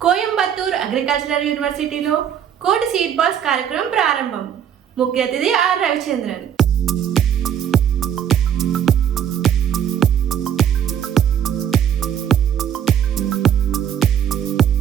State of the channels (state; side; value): quieter; left; 9.1 dB